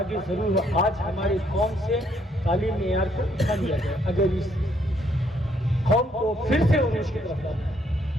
ضرور ہو۔ آج ہماری قوم سے تعلیم معیار کو اٹھا لیا جائے، اگر اس قوم کو پھر سے عروج کی طرف لانا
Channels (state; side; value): normal; both; correlation 0.70